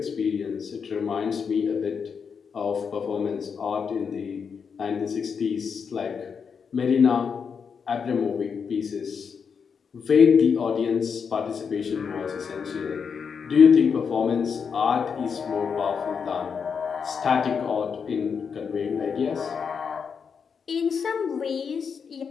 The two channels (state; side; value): quieter; right; 6.3 dB